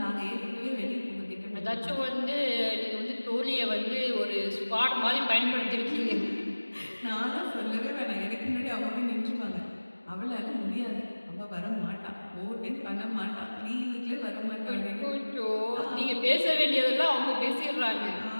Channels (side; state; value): both; inverted; correlation -1.00